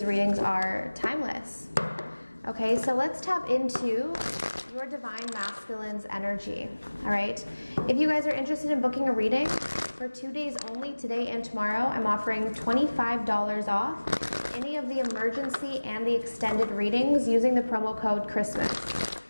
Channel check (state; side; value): inverted; both; correlation -1.00